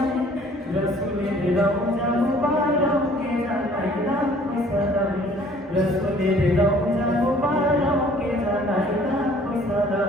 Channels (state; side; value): normal; both; correlation 0.55